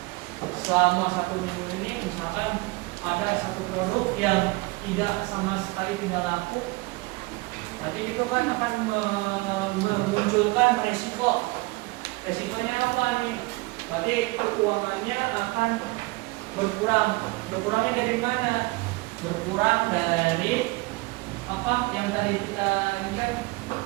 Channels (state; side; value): quieter; left; 23.9 dB